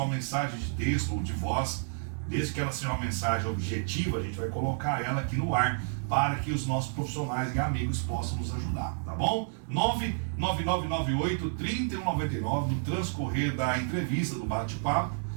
mensagem de texto ou de voz, desde que ela seja uma mensagem objetiva, a gente vai colocar ela aqui no ar para que os nossos profissionais e amigos possam nos ajudar, tá bom? 99998-3199, no transcorrer da entrevista, do bate-papo,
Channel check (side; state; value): left; silent; digital silence